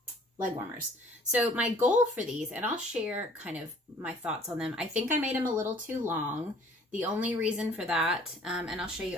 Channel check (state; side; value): normal; both; correlation 0.54